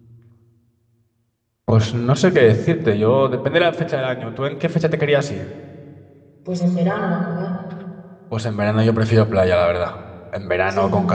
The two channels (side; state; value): both; identical; correlation 1.00